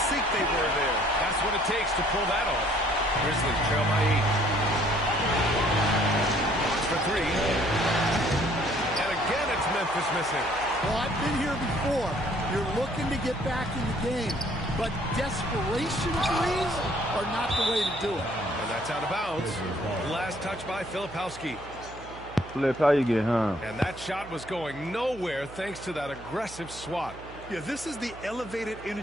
sync they were there. That's what it takes to pull that off. Grizzlies trail by 8. Fox for 3. And again, it's Memphis missing. Well, I've been here before. You're looking to get back in the game, but desperation threes are not the way to do it. And that's out of bounds. Last touch by Filipowski. Flip, how you get home? And that shot was going nowhere thanks to that aggressive swat. Yeah, this is the elevated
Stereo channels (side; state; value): right; noise; hum, 17 dB below the sound